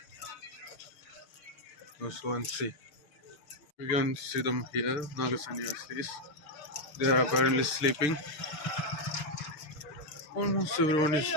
Let's go and see. We can see them here, Naga Sannyasis. They are apparently sleeping. Almost everyone is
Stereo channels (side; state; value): right; late; 6.8 ms